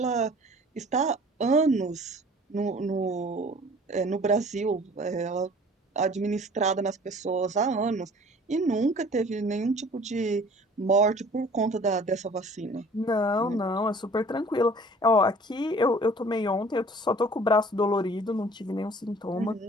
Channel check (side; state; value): both; normal; correlation 0.49